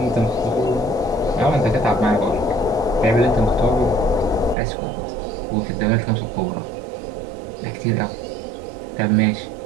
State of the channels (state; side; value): drops out; left; at 4.5 s